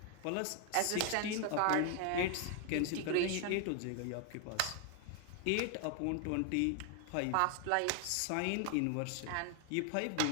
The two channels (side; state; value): both; different; correlation 0.00